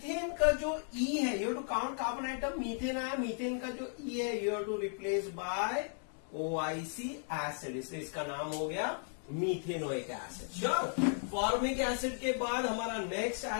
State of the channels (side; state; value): right; silent; 54 dB below the other